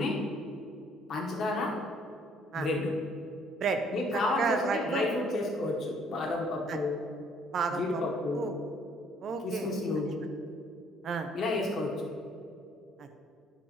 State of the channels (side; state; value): both; normal; correlation 0.62